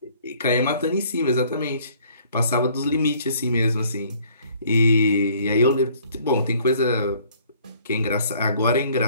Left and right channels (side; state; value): both; inverted; correlation -0.58